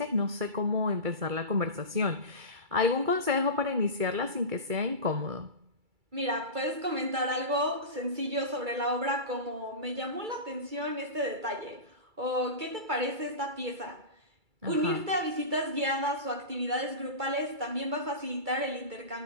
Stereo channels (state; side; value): late; left; 2.3 ms